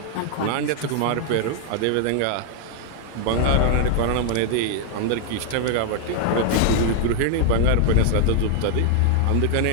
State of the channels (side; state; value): both; different; correlation 0.00